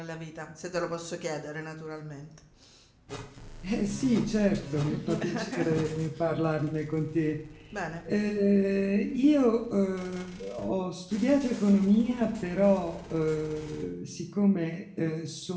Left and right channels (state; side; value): identical; both; correlation 1.00